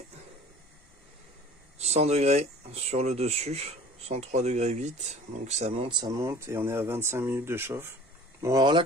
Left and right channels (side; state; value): both; normal; correlation 0.45